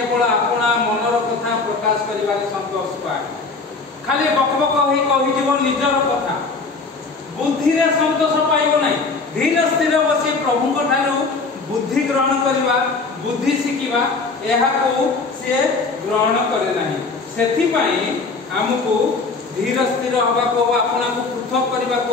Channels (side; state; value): right; quieter; 4.1 dB